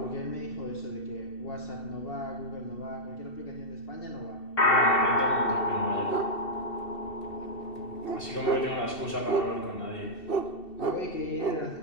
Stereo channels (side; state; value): right; late; 2.7 ms